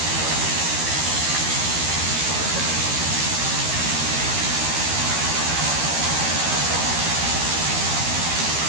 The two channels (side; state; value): left; late; 13 ms